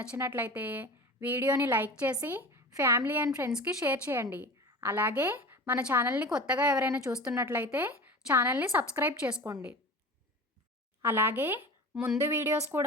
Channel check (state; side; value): normal; both; correlation 0.34